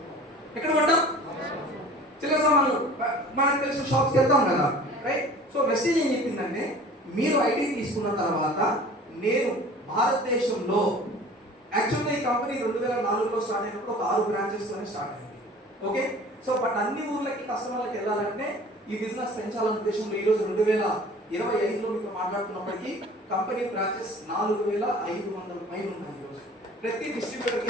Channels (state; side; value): normal; both; correlation 0.45